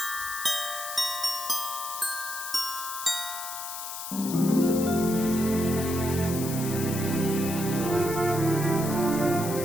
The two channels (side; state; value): left; noise; hiss, 7 dB below the sound